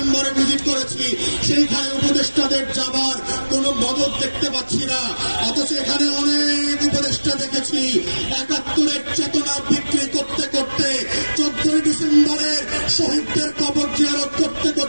ভিজিট করেছি, সেইখানে উপদেষ্টাদের যাবার কোনো মদত দেখতে পাচ্ছি না। অথচ এখানে অনেক উপদেষ্টা দেখেছি ৭১-এর চেতনা বিক্রি করতে করতে 14ই ডিসেম্বরের শহীদদের কবর জিয়ারত করতে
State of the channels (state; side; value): inverted; both; correlation -1.00